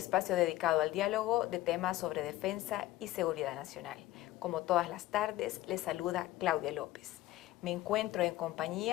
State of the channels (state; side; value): quieter; right; 15.7 dB